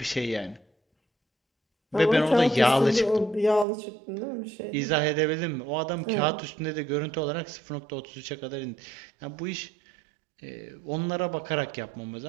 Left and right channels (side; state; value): left; drops out; at 3.7 s